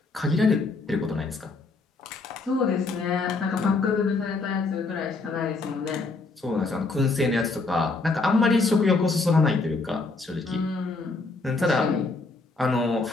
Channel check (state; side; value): quieter; right; 3.7 dB